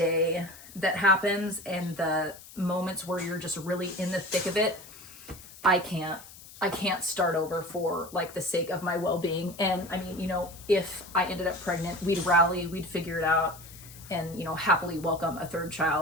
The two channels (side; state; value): left; noise; hiss, 18 dB below the sound